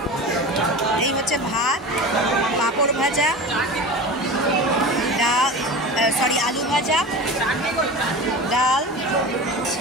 এই হচ্ছে ভাত, পাঁপড় ভাজা, ডাল, আলু ভাজা, ডাল,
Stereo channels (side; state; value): both; normal; correlation 0.32